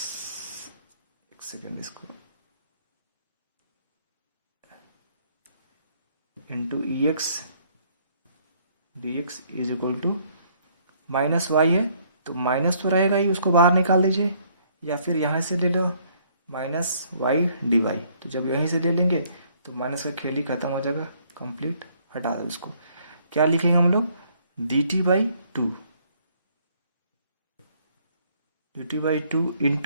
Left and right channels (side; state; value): both; inverted; correlation -0.65